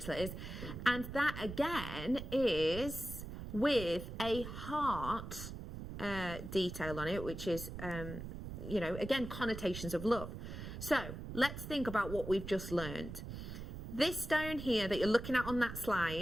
is. And that, again, is with a heart detail on it, which is, you know, again, connotations of love. So let's think about what we've just learned. This stone here that you're looking at on that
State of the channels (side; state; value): right; noise; rumble, 8 dB below the sound